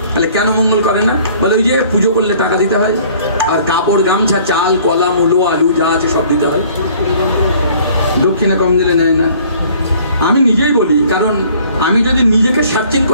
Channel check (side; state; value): both; inverted; correlation -0.55